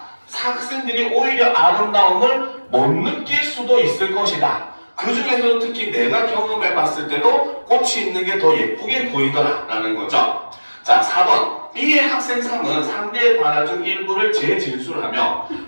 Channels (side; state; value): both; inverted; correlation -1.00